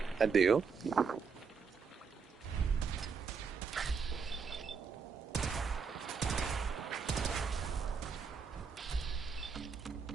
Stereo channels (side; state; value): left; quieter; 5.7 dB